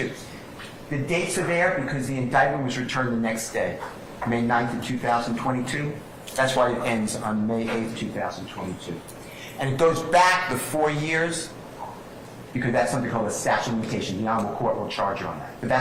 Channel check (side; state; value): both; identical; correlation 1.00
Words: The dates are there because the indictment was returned the next day, May 9th of 2022. That's why it ends on May 8th, 2022. And it goes back the 4 years because that's something called a statute of limitation. The Honorable Court will charge you on that. But